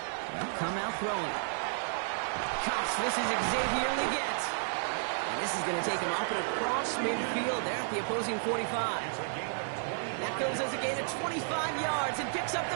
Well, come out throwing. Cuffs, this is Xavier Leggett. And this is going to take him up and across midfield there at the opposing 45. That goes as a gain of 25 yards and picks up the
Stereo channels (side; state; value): left; silent; 56 dB below the other